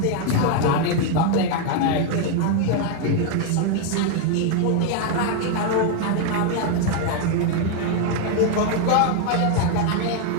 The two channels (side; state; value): both; different; correlation 0.00